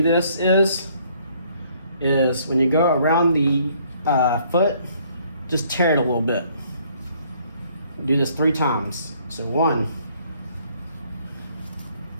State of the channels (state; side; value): inverted; both; correlation -0.63